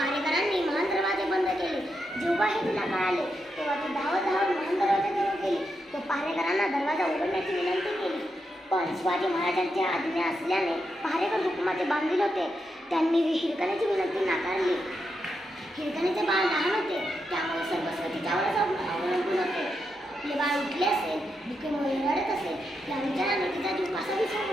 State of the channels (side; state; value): both; normal; correlation 0.84